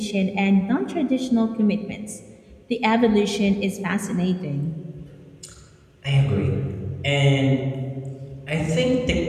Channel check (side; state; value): both; identical; correlation 1.00